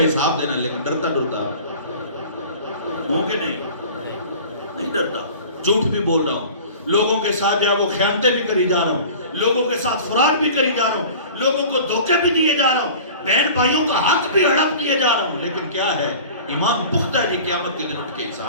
حساب دینا, لیکن ڈرتا ہوں کہ نہیں ڈرتا. جھوٹ بھی بول رہا ہوں, لوگوں کے ساتھ جو ہے وہ خیانتیں بھی کری جا رہا ہوں, لوگوں کے ساتھ فراڈ بھی کری جا رہا ہوں, لوگوں کو دھوکے بھی دیے جا رہا ہوں, بہن بھائیوں کا حق بھی ہڑپ دیے جا رہا ہوں. لیکن کیا ہے, ایمان پختہ ہے. قیامت کے دن اٹھ کے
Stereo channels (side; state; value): both; inverted; correlation -0.41